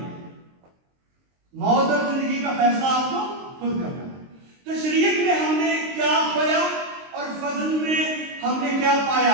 موت اور زندگی زندگی کا فیصلہ آپ کو خود کرنا ہے. تو شریعت میں ہم نے کیا کھویا اور فضل میں ہم نے کیا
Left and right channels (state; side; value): late; left; 23 ms